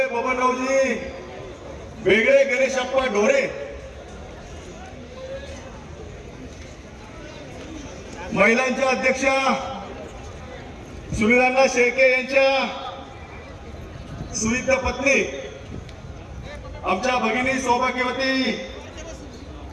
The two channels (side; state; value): both; identical; correlation 1.00